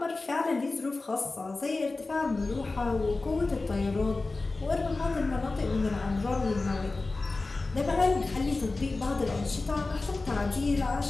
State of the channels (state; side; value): quieter; right; 3.4 dB